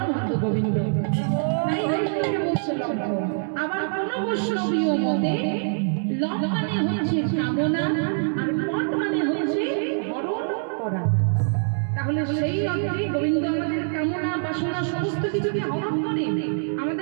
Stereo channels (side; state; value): left; silent; 62 dB below the other